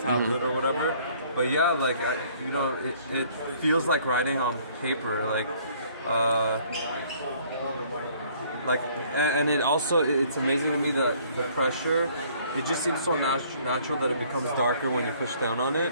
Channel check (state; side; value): inverted; both; correlation -0.59